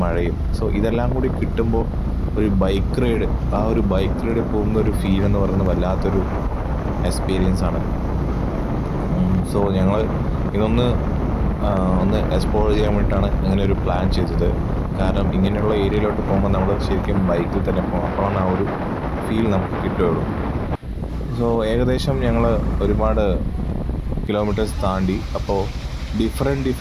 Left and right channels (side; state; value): both; identical; correlation 1.00